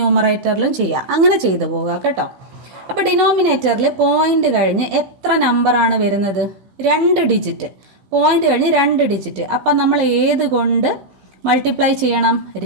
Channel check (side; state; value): left; late; 15 ms